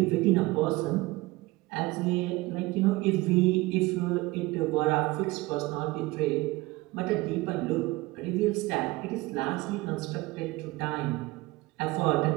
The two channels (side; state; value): left; quieter; 20.9 dB